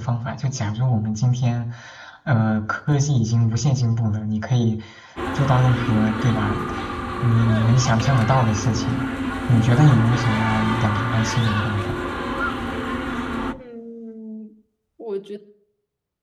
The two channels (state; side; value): identical; both; correlation 1.00